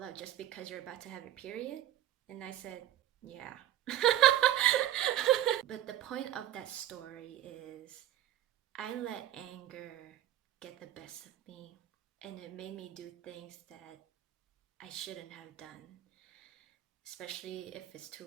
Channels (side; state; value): left; quieter; 12.6 dB